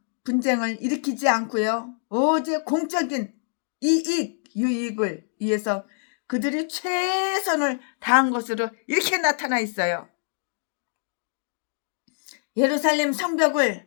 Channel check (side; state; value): right; silent; digital silence